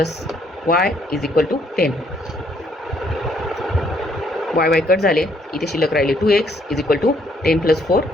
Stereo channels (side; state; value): both; normal; correlation 0.69